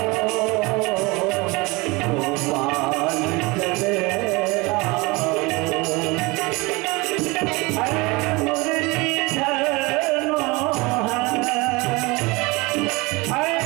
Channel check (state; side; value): quieter; left; 24.8 dB